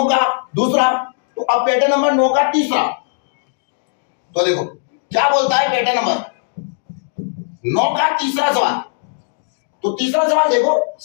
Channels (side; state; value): right; silent; digital silence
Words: का दूसरा, तो अब पैटर्न नंबर 9 का तीसरा। तो देखो क्या बोलता है पैटर्न नंबर 9 का तीसरा सवाल। तो तीसरा सवाल देखो,